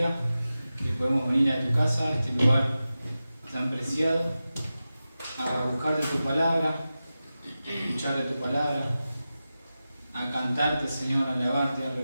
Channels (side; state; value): both; inverted; correlation -0.94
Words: que podemos venir a tu casa, a este lugar tan preciado, a buscar de tu palabra, a escuchar de tu palabra, a cantarte, Señor, a alabarte, a